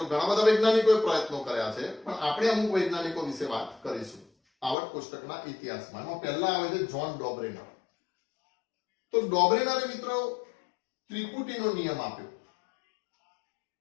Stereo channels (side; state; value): right; drops out; at 4.8 s